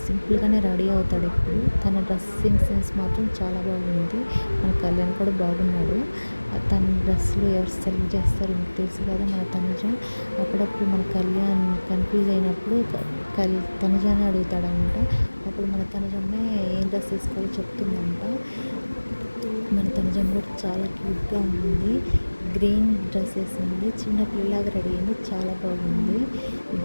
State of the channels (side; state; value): both; inverted; correlation -1.00